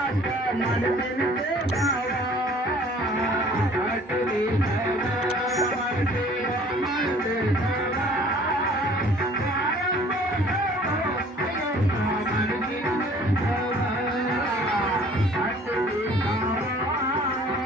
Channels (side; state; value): both; normal; correlation 0.53